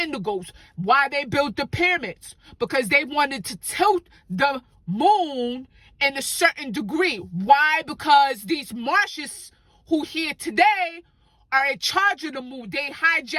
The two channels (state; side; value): identical; both; correlation 1.00